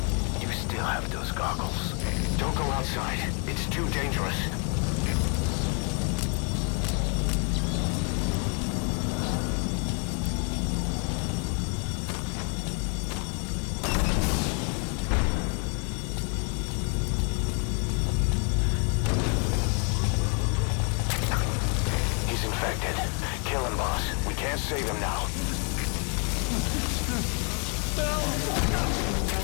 You still have those goggles. Don't go outside. It's too dangerous. Kill him, boss. We can't save him now.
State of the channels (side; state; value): right; quieter; 37.9 dB